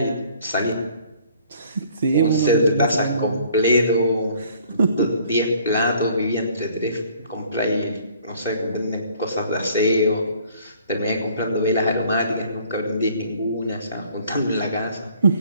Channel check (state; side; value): inverted; both; correlation -0.57